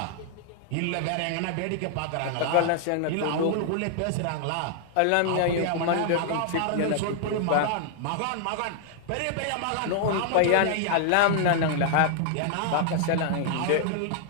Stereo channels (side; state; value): both; different; correlation 0.00